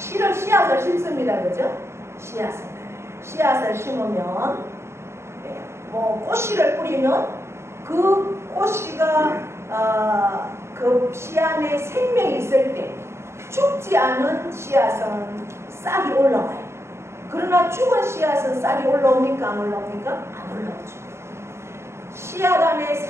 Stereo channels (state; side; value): late; left; 0.13 ms